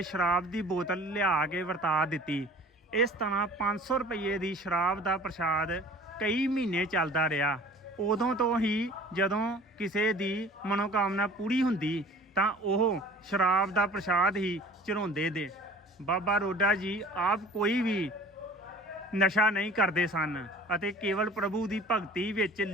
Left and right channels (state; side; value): normal; both; correlation 0.46